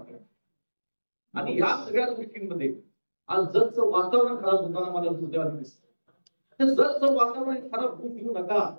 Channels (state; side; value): inverted; both; correlation -1.00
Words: आणि या सगळ्या गोष्टींमध्ये आज जगचं वातावरण खराब होताना मला दुर्दैवाने दिसतं. जगचं वातावरण खराब होऊ देऊ नका.